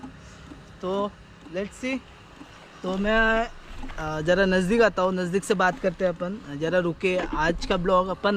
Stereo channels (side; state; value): both; identical; correlation 1.00